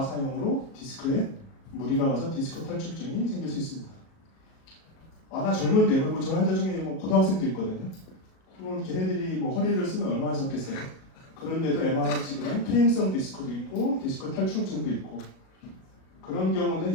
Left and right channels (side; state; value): right; late; 37 ms